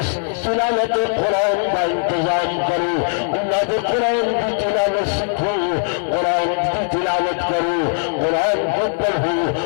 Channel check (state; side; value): silent; right; 66 dB below the other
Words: تلاوت قرآن کا انتظام کرو، اللہ کے قرآن کی تلاوت سیکھو، قرآن کی تلاوت کرو، قرآن کو پڑھو،